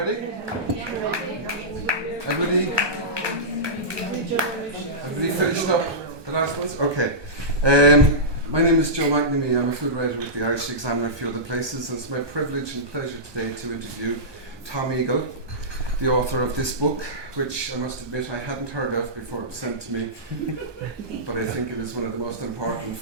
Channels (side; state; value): left; late; 1.2 ms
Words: Everybody finished up the last ones? Okay. My name is Joe McNamee. I'm a food writer with the Irish Examiner and a few other places, and it's my privilege and pleasure today to interview Thom Eagle, the author of this book, which I must admit I hadn't heard of before it was sent to me, but I think it is one of the most important